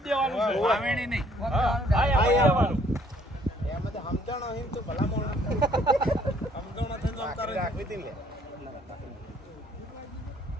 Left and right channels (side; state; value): both; normal; correlation 0.62